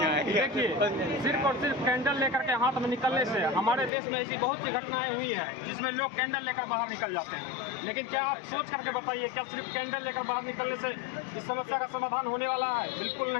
देखिए, सिर्फ और सिर्फ कैंडल लेकर के हाथ में निकलने से हमारे देश में ऐसी बहुत सी घटनाएं हुई है जिसमें लोग कैंडल लेकर बाहर निकल जाते हैं। लेकिन क्या आप सोच करके बताइए, क्या सिर्फ कैंडल लेकर बाहर निकलने से इस समस्या का समाधान होने वाला है? बिल्कुल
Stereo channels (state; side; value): drops out; right; at 3.9 s